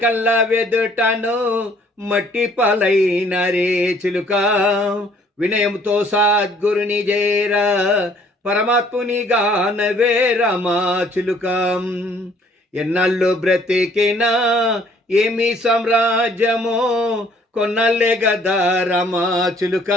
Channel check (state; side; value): normal; both; correlation 0.60